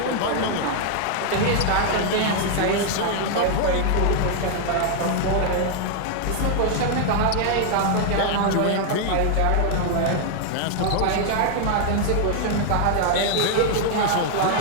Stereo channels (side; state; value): both; different; correlation 0.00